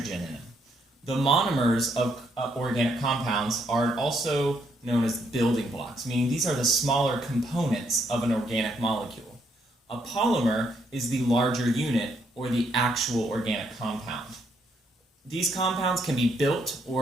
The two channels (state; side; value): normal; both; correlation 0.73